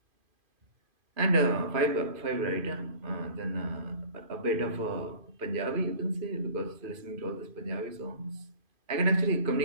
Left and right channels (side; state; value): left; late; 2.5 ms